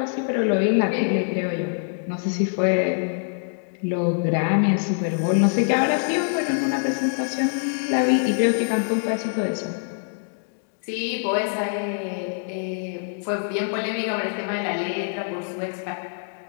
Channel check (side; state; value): right; silent; digital silence